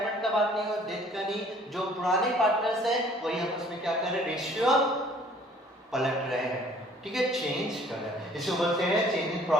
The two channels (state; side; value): normal; both; correlation 0.55